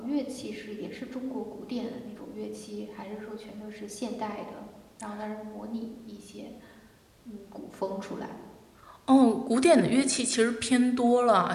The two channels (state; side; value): identical; both; correlation 1.00